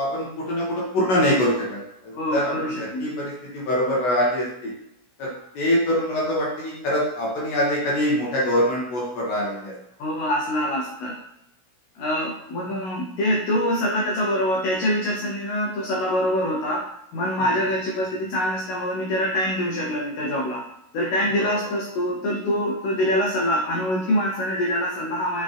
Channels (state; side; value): late; right; 16 ms